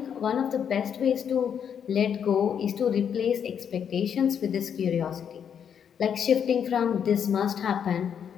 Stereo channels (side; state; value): right; quieter; 8.0 dB